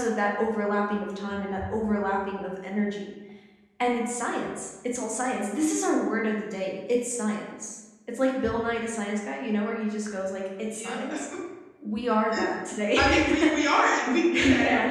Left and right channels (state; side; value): identical; both; correlation 1.00